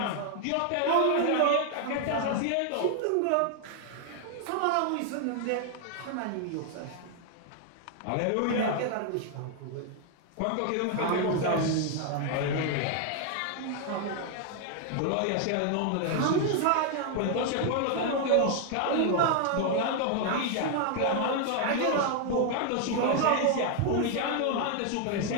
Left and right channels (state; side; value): different; both; correlation 0.00